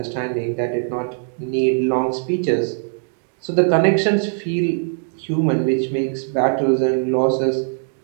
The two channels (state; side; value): silent; left; digital silence